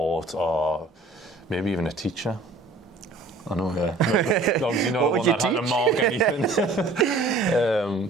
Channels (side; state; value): left; quieter; 3.1 dB